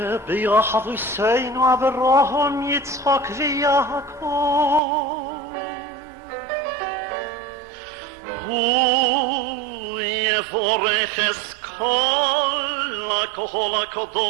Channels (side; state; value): left; drops out; at 4.8 s